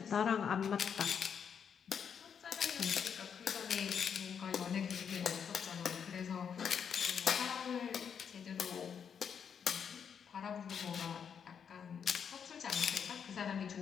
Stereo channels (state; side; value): quieter; right; 7.3 dB